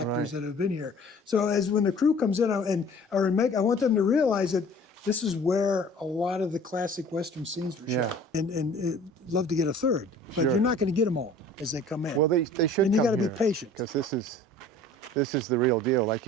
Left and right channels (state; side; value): normal; both; correlation 0.48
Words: that have been here. So as when the crew comes in I want them to realize that this is where a lot of the classic Western scenes were shot. And love to get a third, but you're not going to get them all as they come in. Well, they should. And you got to be patient, because this is the real deal. Like